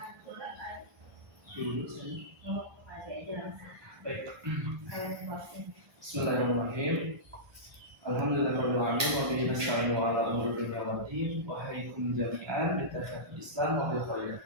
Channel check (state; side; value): late; left; 1.2 ms